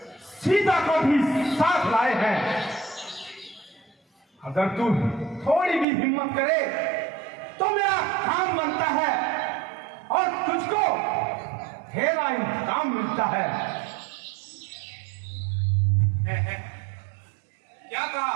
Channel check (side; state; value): left; drops out; at 5.9 s